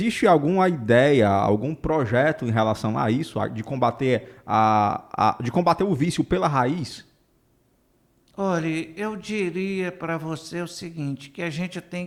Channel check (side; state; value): both; identical; correlation 1.00